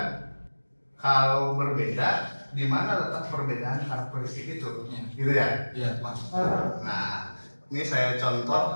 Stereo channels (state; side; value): inverted; both; correlation -1.00